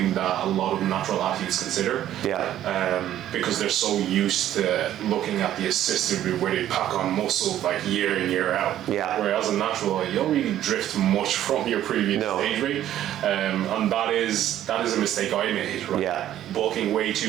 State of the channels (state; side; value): quieter; left; 12.1 dB